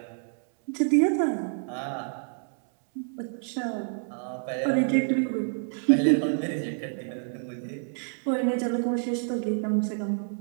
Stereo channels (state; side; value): silent; left; 59 dB below the other